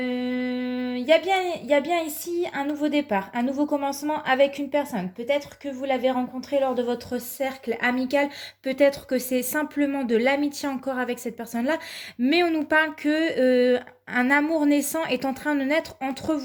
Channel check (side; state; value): both; identical; correlation 1.00